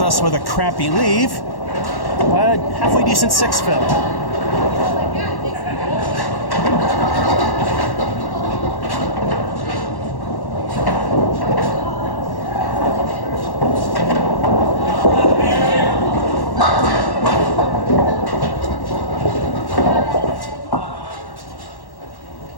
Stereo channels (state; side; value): late; right; 1.1 ms